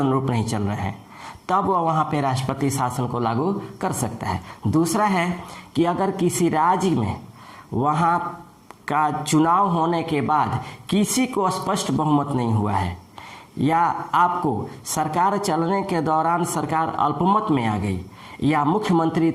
नहीं चल रहे हैं, तब वह वहाँ पे राष्ट्रपति शासन को लागू कर सकता है। दूसरा है कि अगर किसी राज्य में वहाँ का चुनाव होने के बाद किसी को स्पष्ट बहुमत नहीं हुआ है या आपको सरकार चलने के दौरान सरकार अल्पमत में आ गई या मुख्यमंत्री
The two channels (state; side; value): identical; both; correlation 1.00